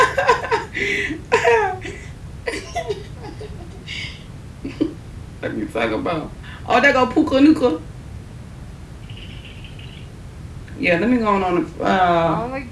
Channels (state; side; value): identical; both; correlation 1.00